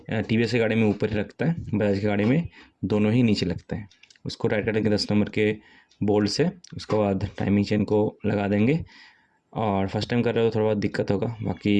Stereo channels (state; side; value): identical; both; correlation 1.00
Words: TVS की गाड़ी में ऊपर ही लगता है, बजाज की गाड़ी में दोनों ही नीचे लगते हैं। उसको टाइट करेंगे 10 नंबर के बोल्ट से। उसके बाद टाइमिंग चेन को लगा देंगे। और फर्स्ट टाइम कर रहे हो थोड़ा बहुत दिक्कत होगा,